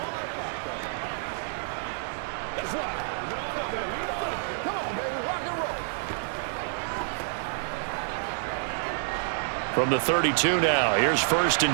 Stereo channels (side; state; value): left; silent; digital silence